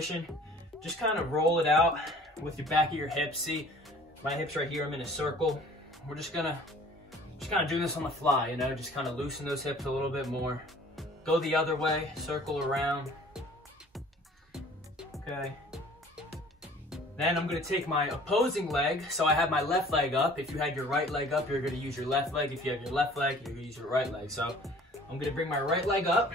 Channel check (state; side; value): normal; both; correlation 0.50